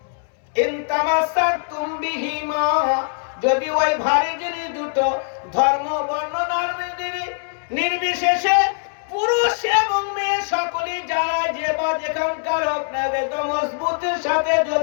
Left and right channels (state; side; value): silent; right; 64 dB below the other